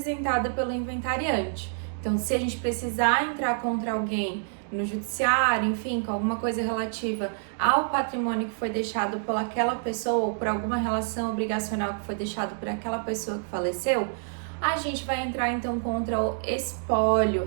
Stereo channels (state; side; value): silent; left; digital silence